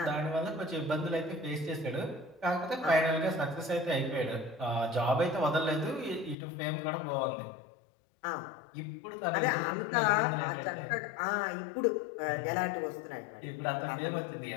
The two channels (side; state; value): right; drops out; at 6.4 s